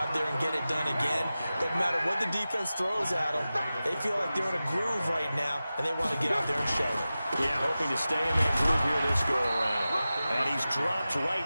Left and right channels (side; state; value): both; inverted; correlation -0.95